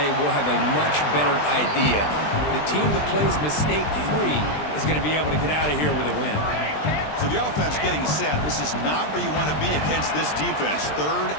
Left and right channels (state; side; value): late; right; 20 ms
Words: we'll have a much better idea. The team that plays mistake-free is going to be able to get out of here with a win. So the offense getting set. This is not where you want to be against this defense. Third